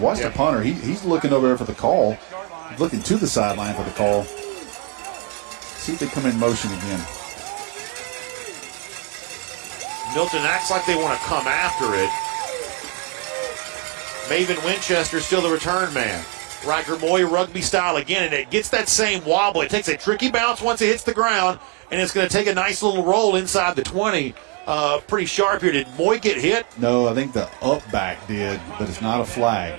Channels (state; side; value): quieter; left; 30.7 dB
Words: the punter. He's looking over there for the call. He's looking to the sideline for the call. See if they come in motion again. Milton acts like they want to come after it. Maven Winchester still the return man. Riker Moy rugby style again, and it gets that same wobble. It takes a tricky bounce once it hits the ground, and it's going to take a nice little roll inside the 20. Pretty sharp here. Did Moy get hit? No, I think the up back did, but it's not a flag.